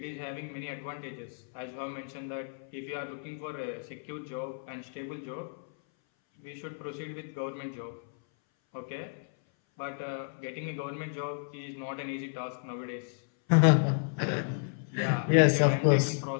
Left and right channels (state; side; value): silent; right; 56 dB below the other